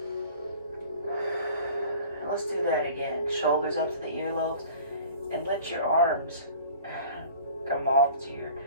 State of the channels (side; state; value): both; inverted; correlation -0.45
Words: And let's do that again. Shoulders up to the earlobes, and let your arms come off to your